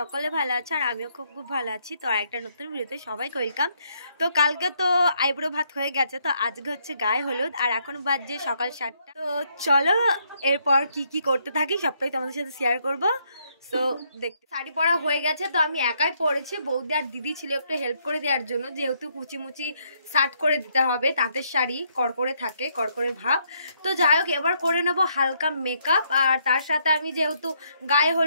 ভালো আছো আর আমিও খুব ভালো আছি। তো একটা নতুন ভিডিওতে সবাইকে ওয়েলকাম। তো কালকে তো আইব্রো ভাত হয়ে গেছে, তো আজকে হচ্ছে গায়ে হলুদ আর এখন বাজছে সকাল 7টা। তো চলো এরপর কি করতে থাকি সবটাই তোমাদের সাথে শেয়ার করবো। তো দেখতে শাড়ি পরা হয়ে গেছে, তো আমি একাই পরেছি। বৌদি আর দিদি ছিল একটু হেল্প করে দেওয়ার জন্য, যেহেতু কুচিমুচি শার্ট করে দিতে হবে, তাঁতের শাড়ি কড়কড়ে থাকে, কড়কড়ে ভাব। তো যাই হোক, এবার করে নেবো হালকা মেকআপ। আর তার সাথে আমি যেহেতু গায়ে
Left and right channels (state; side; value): inverted; both; correlation -0.73